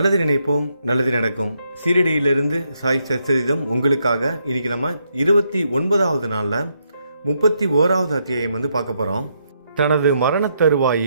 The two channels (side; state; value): both; inverted; correlation -0.77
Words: நினைப்போம், நல்லது நடக்கும். சீரடியிலிருந்து சாய் சச்சரிதம் உங்களுக்காக. இன்னைக்கு நம்ம 29வது நாளில் 31வது அத்தியாயம் பார்க்க போகிறோம். தனது மரண